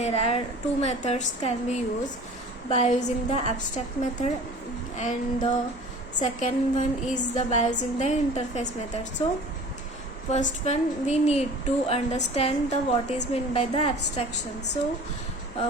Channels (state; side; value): normal; both; correlation 0.43